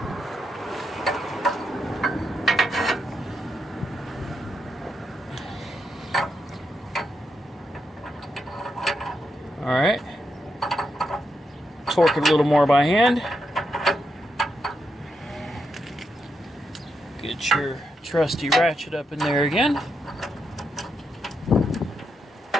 Alright, torque it a little more by hand. Get your trusty ratchet up in there again.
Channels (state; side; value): normal; both; correlation 0.83